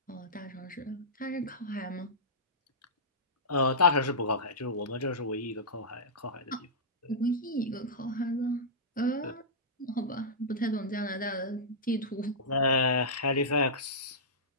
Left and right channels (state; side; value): normal; both; correlation -0.14